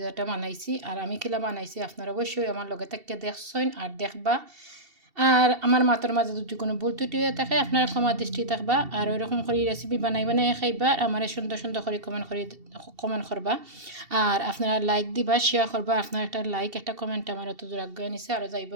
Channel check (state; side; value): late; left; 2.7 ms